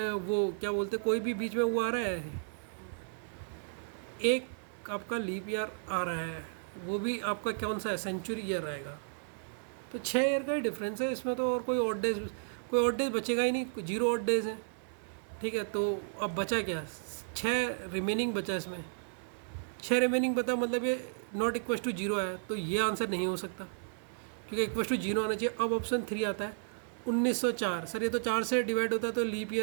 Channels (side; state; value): left; silent; 55 dB below the other